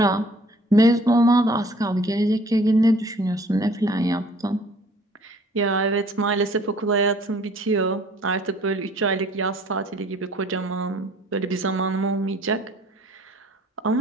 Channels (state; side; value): normal; both; correlation 0.55